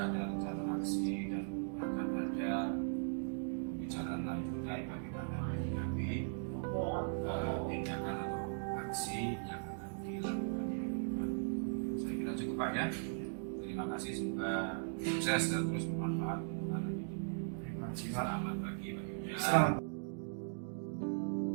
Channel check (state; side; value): silent; left; digital silence